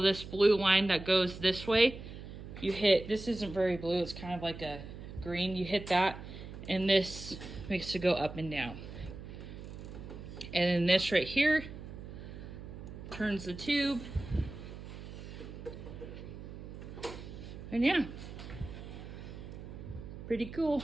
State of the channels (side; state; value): right; noise; hum, 11 dB below the sound